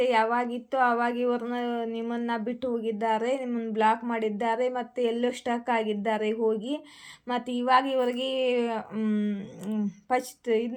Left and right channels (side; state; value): both; identical; correlation 1.00